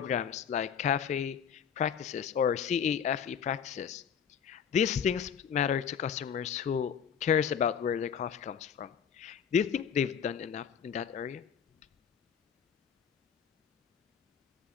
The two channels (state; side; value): quieter; right; 7.7 dB